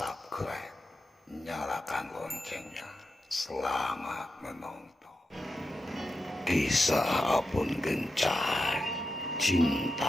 nyalakan loncengnya. Selamat menonton. Kisah Apun Gencai,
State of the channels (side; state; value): both; normal; correlation 0.89